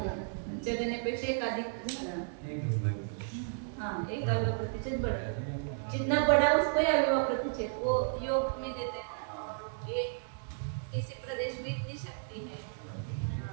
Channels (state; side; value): silent; left; digital silence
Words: जगण्यापेक्षा एक अधिक झाला। हाँ, एक अविभाव प्रतिच्छेद बढ़ा, जितना बड़ा उसको ही अविभाव प्रतिच्छेद। वो योग में देते हैं ये किसी प्रदेश में इतनी शक्ति है,